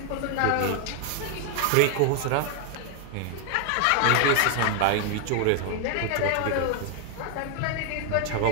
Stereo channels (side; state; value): both; different; correlation 0.00